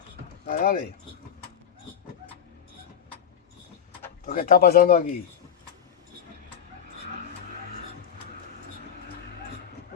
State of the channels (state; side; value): quieter; right; 8.3 dB